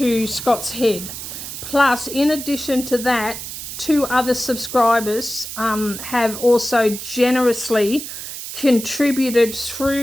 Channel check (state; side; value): noise; right; hiss, 9 dB below the sound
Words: Scott's Head. Plus, in addition to that, 2 other subscribers have also generously contributed